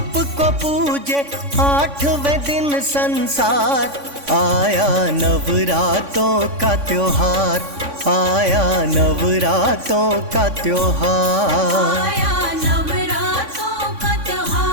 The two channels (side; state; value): left; late; 3.5 ms